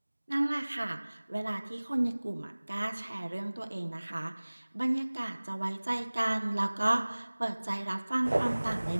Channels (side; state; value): both; inverted; correlation -1.00